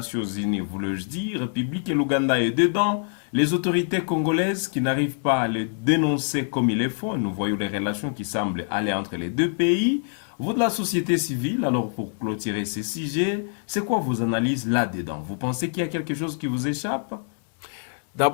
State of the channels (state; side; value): silent; right; 62 dB below the other